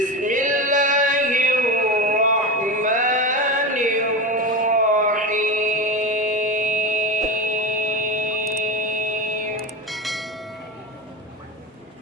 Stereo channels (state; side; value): normal; both; correlation 0.22